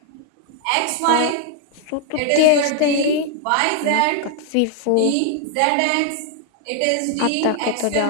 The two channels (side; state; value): both; different; correlation 0.00